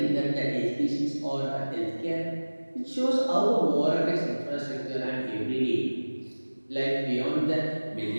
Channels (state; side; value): inverted; both; correlation -1.00